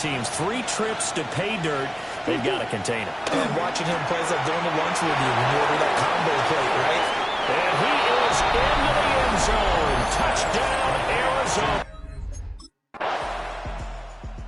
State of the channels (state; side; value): identical; both; correlation 1.00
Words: 3 trips to pay dirt. They've got to contain him. And watching him play is like going to lunch with you when you order that combo plate, right? And he is into the end zone. Touchdown, Arizona.